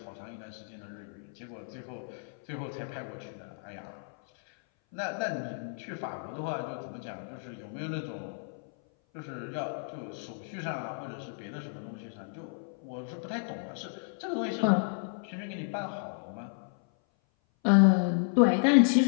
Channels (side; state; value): right; silent; 56 dB below the other